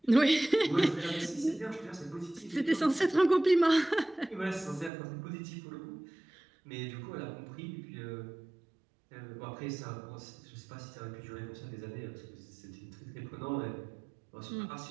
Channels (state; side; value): drops out; left; at 4.9 s